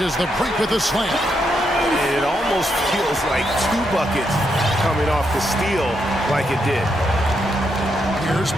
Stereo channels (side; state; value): both; normal; correlation 0.80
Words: the break with a slam. It almost feels like two buckets coming off the steal like it did. Here's